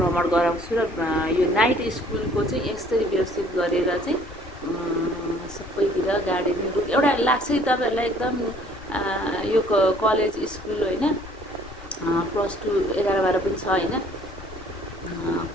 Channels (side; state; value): left; noise; rumble, 18 dB below the sound